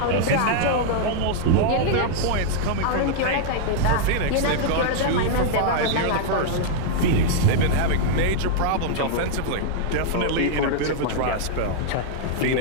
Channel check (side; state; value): both; different; correlation -0.01